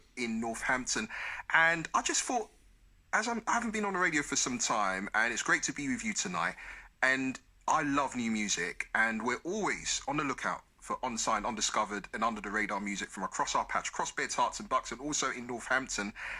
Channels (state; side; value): identical; both; correlation 1.00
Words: in Northampton. And I just thought, I haven't been on the radio for some time, and it's great to be with you tonight. And I love new music, and we're always on the lookout for unsigned, undiscovered and under the radar music from across our patch, across Beds, Herts and Bucks and also in Northampton.